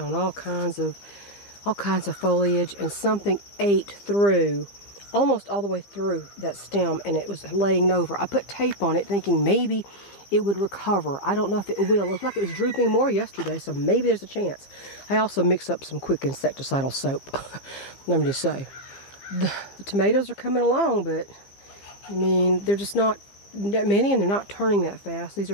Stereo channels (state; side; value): late; right; 15 ms